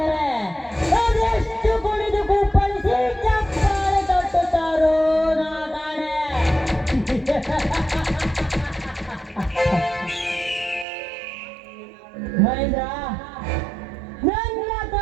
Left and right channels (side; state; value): left; drops out; at 10.9 s